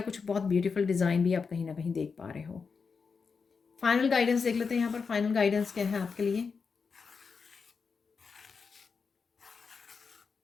कुछ बहुत ब्यूटीफुल डिज़ाइन भी आप कहीं ना कहीं देख पा रहे हो। फाइनल गाइडेंस देख लेते हैं यहाँ पर, फाइनल गाइडेंस क्या है आपके लिए।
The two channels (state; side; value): quieter; right; 5.3 dB